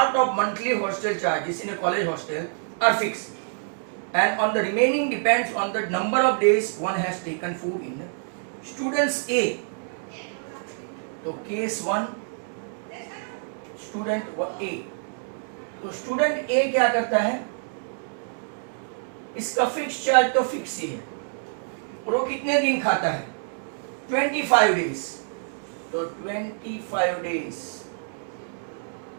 of monthly hostel charges in a college hostel are fix and on the remaining depends on the number of days one has taken food in students A। तो केस 1 स्टूडेंट A, तो student A क्या करता है, इसका fix charge तो fix ही है और वो कितने दिन खाता है 25 डेज, तो 25 डेज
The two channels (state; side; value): silent; left; digital silence